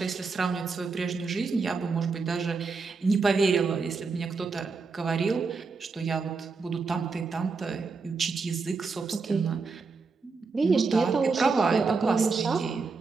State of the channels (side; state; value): left; quieter; 4.5 dB